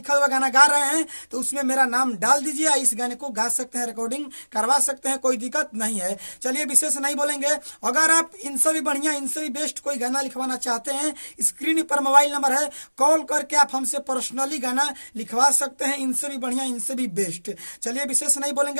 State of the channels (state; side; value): inverted; both; correlation -1.00